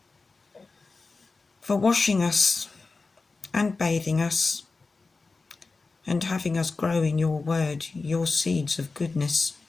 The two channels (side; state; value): right; quieter; 3.9 dB